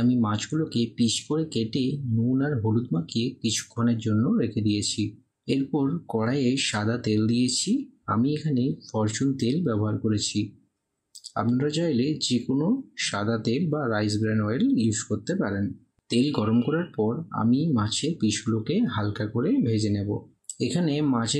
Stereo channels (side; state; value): both; identical; correlation 1.00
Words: আমি মাছগুলোকে পিস করে কেটে নুন আর হলুদ মাখিয়ে কিছুক্ষণের জন্য রেখে দিয়েছি। এরপর কড়াইয়ে সাদা তেল দিয়েছি। আমি এখানে ফরচুন তেল ব্যবহার করেছি। আপনারা চাইলে যে কোনো সাদা তেল বা রাইস ব্র্যান অয়েল ইউজ করতে পারেন। তেল গরম করার পর আমি মাছের পিসগুলোকে হালকা করে ভেজে নেব। এখানে